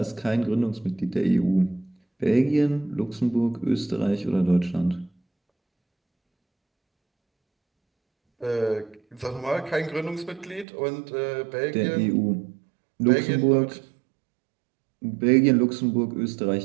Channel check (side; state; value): left; drops out; at 10.7 s